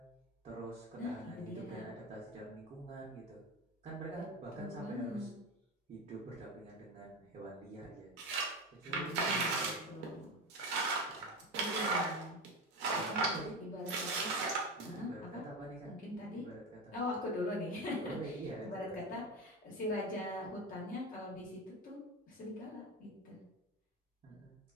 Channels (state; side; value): normal; both; correlation 0.21